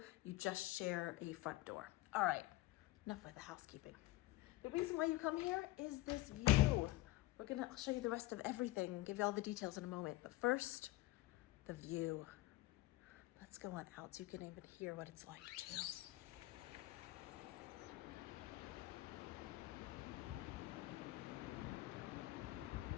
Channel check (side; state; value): right; quieter; 18.2 dB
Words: You just share a front door. All right, enough with the housekeeping. The reason why you come here is this view. I'll show you the rest of everything, give you all the details in a moment. But first, the view. Let's go on out so you can even hear what it's like too.